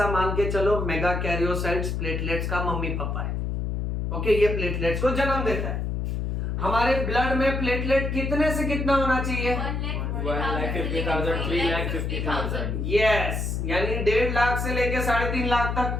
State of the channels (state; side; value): noise; left; hum, 1 dB below the sound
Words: मान के चलो मेगा कैरियोसाइट्स प्लेटलेट्स का मम्मी पापा है, ओके। ये प्लेटलेट्स को जन्म देता है। हमारे ब्लड में प्लेटलेट कितने से कितना होना चाहिए? 1,50,000, 3,50,000। यस, यानी 1.5 लाख से लेके 3.5 लाख तक।